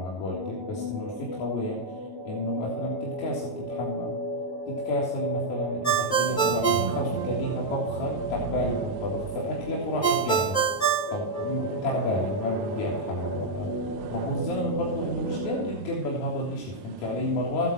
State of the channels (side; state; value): right; late; 9.3 ms